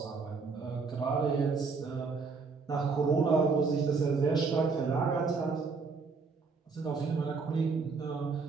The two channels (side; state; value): left; quieter; 4.7 dB